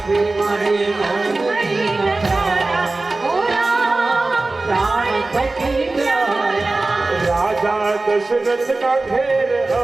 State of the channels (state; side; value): quieter; left; 3.2 dB